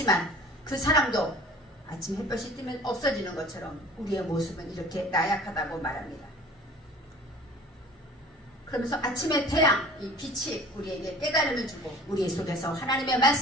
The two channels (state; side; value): normal; both; correlation 0.46